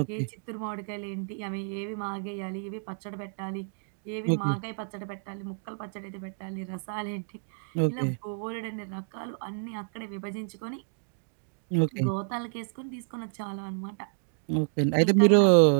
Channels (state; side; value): silent; left; digital silence